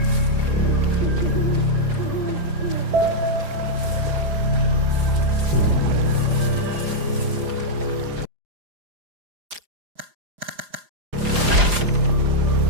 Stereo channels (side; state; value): left; late; 4.9 ms